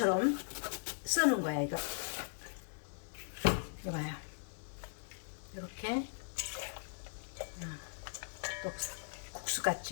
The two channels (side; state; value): right; silent; digital silence